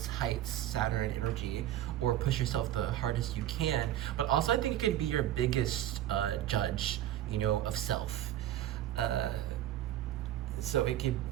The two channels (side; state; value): left; quieter; 12.8 dB